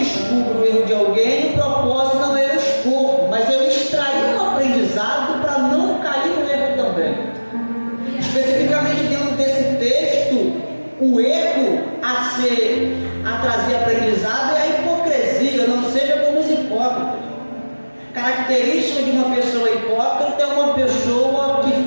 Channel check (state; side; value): inverted; both; correlation -1.00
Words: o erro de alguém, o propósito não é eu expor, mas eu extrair um aprendizado para não cair no erro também. Especificamente dentro desse texto, o erro a trazer aprendizado é a hipocrisia. Não seja como os hipócritas. Característica de uma pessoa hipócrita é uma pessoa